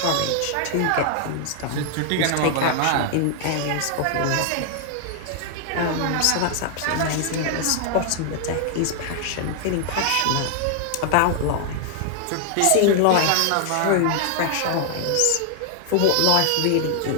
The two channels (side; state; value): both; different; correlation 0.00